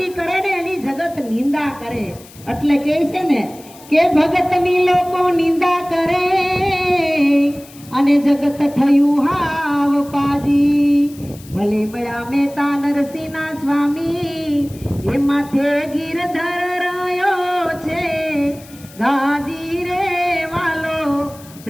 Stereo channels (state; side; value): noise; left; hiss, 22 dB below the sound